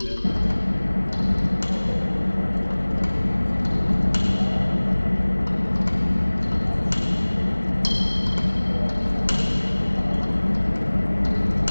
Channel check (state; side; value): inverted; both; correlation -1.00